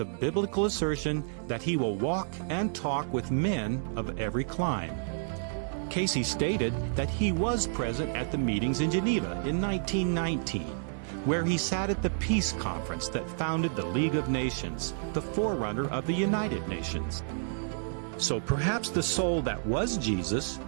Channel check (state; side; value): silent; left; 58 dB below the other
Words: biblical assertion that he will walk and talk with men of every clime. Cayce stated that he was present at the meetings in Geneva in 1919, where he sat at the peace conference that founded the League of Nations, the forerunner of the United Nations. So perhaps the soul that was Jesus